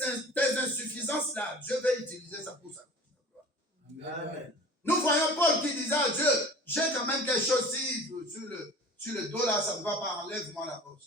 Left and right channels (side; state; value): both; normal; correlation 0.41